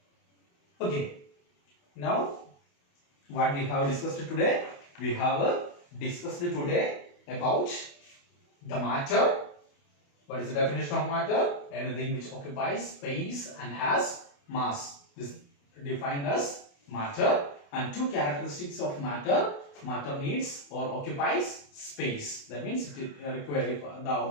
Okay. Now, what we have discussed today? We have discussed today about the matter. What is the definition of matter? Anything which occupies space and has mass. This is defined as matter. And two characteristics of matter. Matter needs or occupies space. That means it requires, if the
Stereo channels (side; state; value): right; late; 28 ms